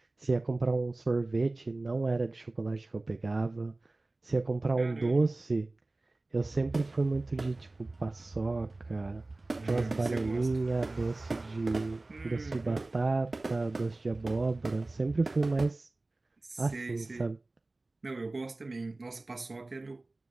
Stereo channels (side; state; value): left; quieter; 3.0 dB